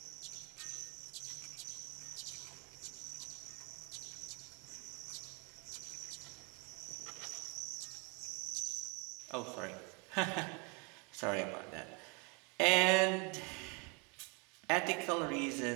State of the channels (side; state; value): left; quieter; 32.5 dB